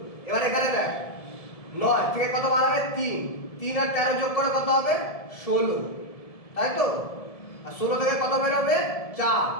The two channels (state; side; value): late; right; 1.7 ms